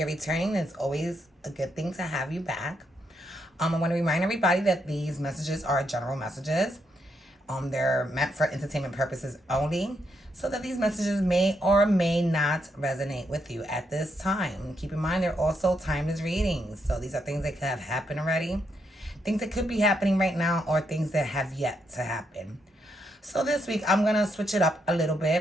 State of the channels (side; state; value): both; normal; correlation 0.79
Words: returning, it's always a good thing to have you back. I want to remind everybody that these messages are general messages. They're meant for entertainment purposes only, so that these messages may or may not resonate with you at this time. Keep in mind, they're also timeless readings. So these are things that could have happened already, things that could be happening right now, or things that have yet to happen. So this week, I'm going to switch it up a little